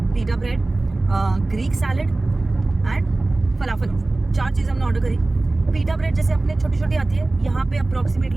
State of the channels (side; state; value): left; quieter; 3.0 dB